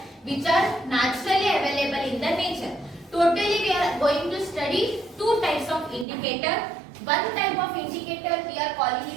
which are naturally available in the nature. Totally we are going to study 2 types of indicator. One type of indicator we are calling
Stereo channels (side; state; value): left; drops out; at 6.1 s